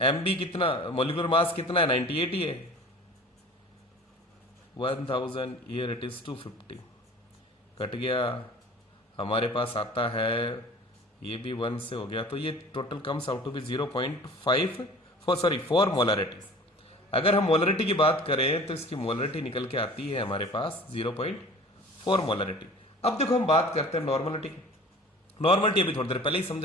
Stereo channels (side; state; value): both; normal; correlation 0.44